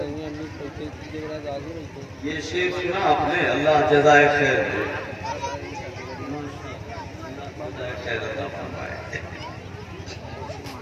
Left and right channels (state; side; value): identical; both; correlation 1.00